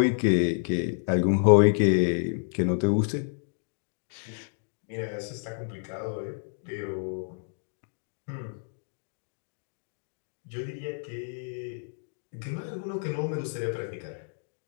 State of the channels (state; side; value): silent; right; digital silence